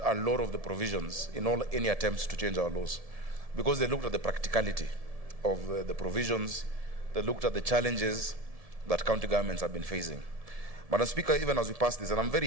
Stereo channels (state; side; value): late; left; 1.7 ms